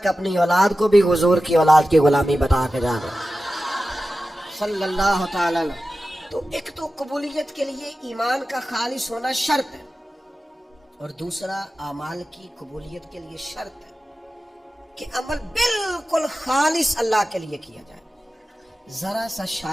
अपनी औलाद को भी हुजूर की औलाद की गुलामी बता के जाना सल्लल्लाहु ताला। तो एक तो कबूलियत के लिए ईमान का खालिस होना शर्त है, और दूसरा अमाल की कबूलियत के लिए शर्त है कि अमल बिल्कुल खालिस अल्लाह के लिए किया जाए। जरा सा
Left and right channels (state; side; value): normal; both; correlation 0.94